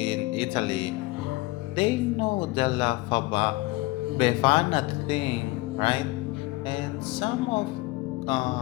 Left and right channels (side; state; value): right; quieter; 20.7 dB